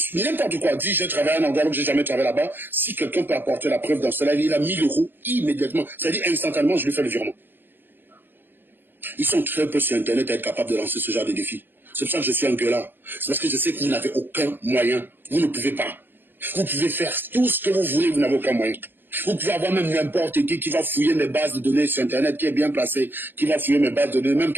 n'importe quoi. Dit, j'ai travaillé à un endroit où j'ai jamais travaillé là-bas. Si quelqu'un peut apporter la preuve dans ce live, il a 1000 € immédiatement. C'est-à-dire instantanément, je lui fais le virement. Ils sont très peu sur Internet à être capables de lancer ce genre de défi. C'est pour ça que je suis un gueulard. C'est parce que je sais que vous n'avez aucun moyen. Vous ne pouvez pas. Vous pouvez faire tout ce que vous voulez, vous n'avez aucun moyen. Vous pouvez avoir même n'importe qui va fouiller mes bases de données sur Internet, qui est bien placé, qui va fouiller mes bases de données, même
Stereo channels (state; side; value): late; left; 0.096 ms